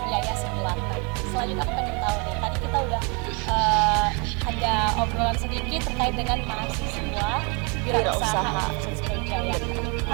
Yaya Seblak. Nah, selanjutnya aku pengen tahu nih, tadi kita udah ada obrolan sedikit terkait dengan mahasiswa wirausaha Universitas Brawijaya.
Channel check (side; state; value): left; quieter; 32.3 dB